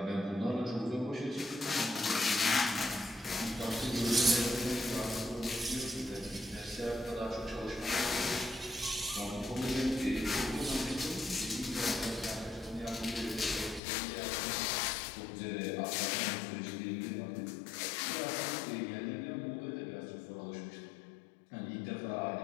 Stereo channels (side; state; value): right; drops out; at 13.8 s